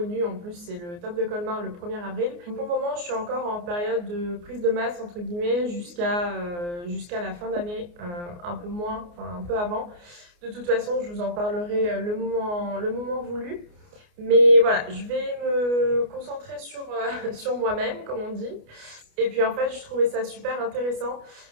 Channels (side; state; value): left; late; 29 ms